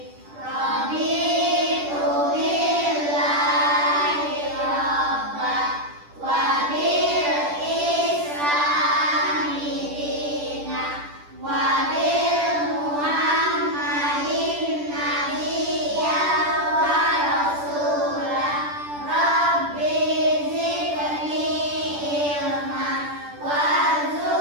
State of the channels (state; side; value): late; left; 10 ms